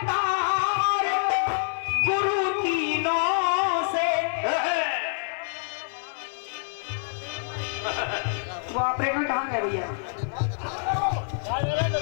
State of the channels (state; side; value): silent; right; digital silence